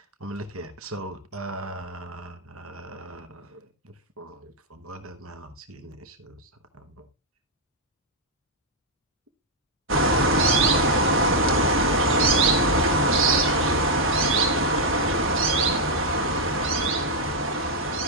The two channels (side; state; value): both; normal; correlation -0.03